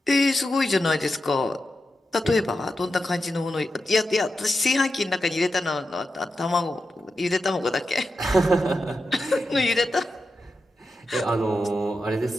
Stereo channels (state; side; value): normal; both; correlation 0.89